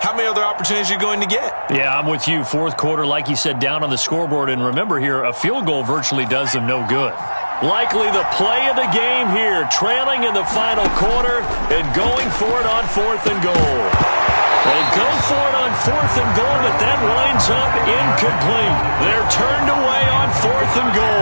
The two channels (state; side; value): inverted; both; correlation -1.00